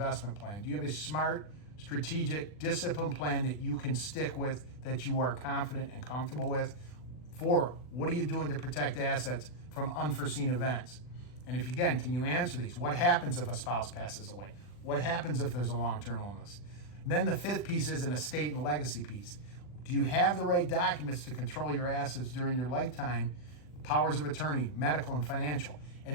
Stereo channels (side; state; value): right; late; 40 ms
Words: plan? Do you have a smart, strategic, disciplined plan that you can stick with, that you are confident and comfortable with? 4, what are you doing to protect assets from unforeseen events? And can you answer these? What happens if a spouse passes away? What happens if there's a long-term illness? And then the 5th piece is an estate and legacy piece. Do you have the right documents to control your assets during your lifetime? Powers of attorney, medical and financial.